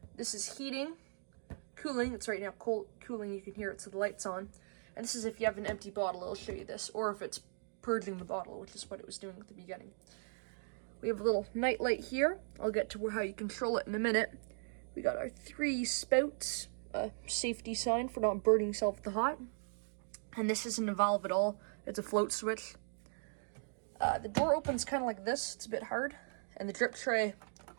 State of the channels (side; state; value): left; silent; digital silence